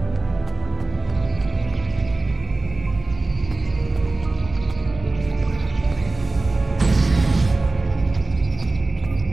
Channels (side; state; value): left; quieter; 3.4 dB